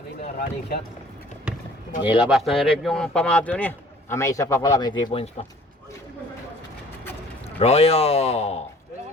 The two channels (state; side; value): normal; both; correlation 0.52